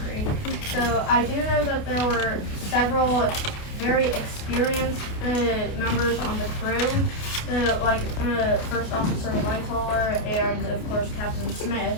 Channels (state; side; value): late; right; 28 ms